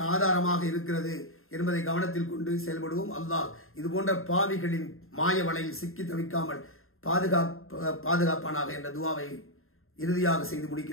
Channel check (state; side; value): late; right; 0.61 ms